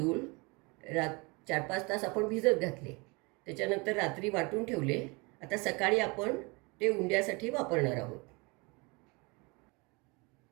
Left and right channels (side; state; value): left; quieter; 28.0 dB